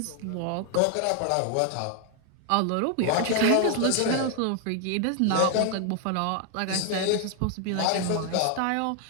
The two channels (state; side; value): different; both; correlation 0.00